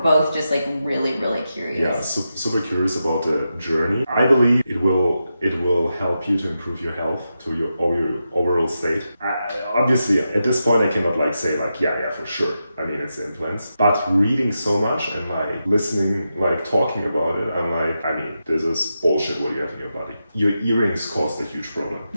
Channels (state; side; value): inverted; both; correlation -0.88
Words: just like really, really curious. Yeah, super curious about the journey. I believe it will help you to improve your health, to your overall state. Obviously, at this point, I cannot like say like, yeah, for sure. I mean, it's implants. But reading so much and like listening, like talking about it, I'm like, I mean, this is bullshit what you have in your body. Your earrings caused a huge problem.